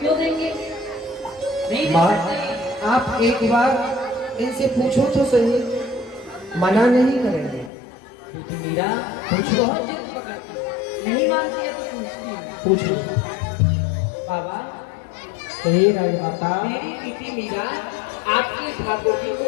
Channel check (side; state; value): right; drops out; at 7.7 s